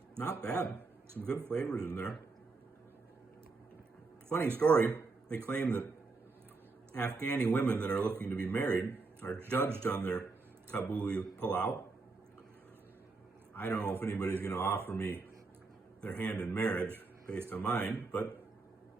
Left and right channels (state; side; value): quieter; left; 3.9 dB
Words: Not bad. Some good flavors in there. Funny story, they claim that Afghani women that are looking to be married are judged on their Kabuli Palau. I don't know if anybody's going to offer me their hand in marriage based on mine, but